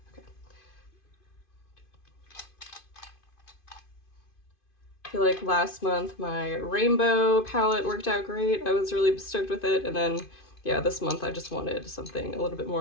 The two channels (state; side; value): late; right; 2.5 ms